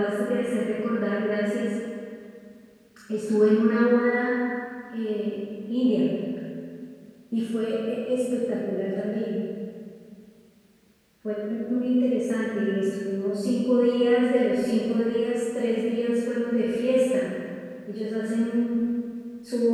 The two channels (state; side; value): identical; both; correlation 1.00